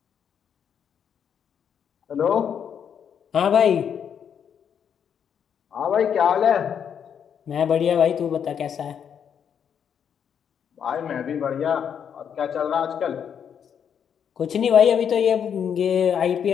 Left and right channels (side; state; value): right; quieter; 8.0 dB